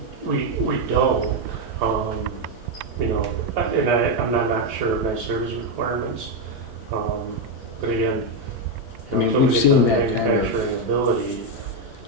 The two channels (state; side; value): normal; both; correlation 0.04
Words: We don't, and I'm not sure of my service requirements. But again, I mean, until we've we get seen the that kind of- manufacturing ability,